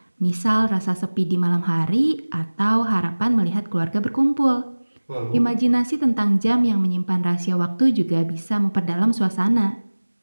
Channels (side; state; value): both; inverted; correlation -1.00